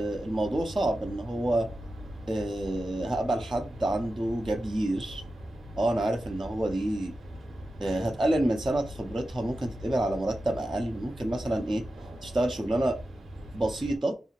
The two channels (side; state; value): both; normal; correlation 0.92